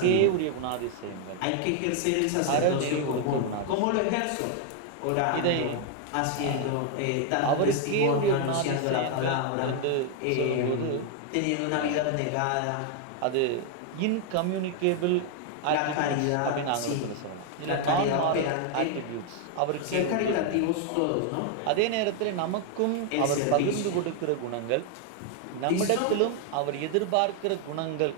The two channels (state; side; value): different; both; correlation 0.00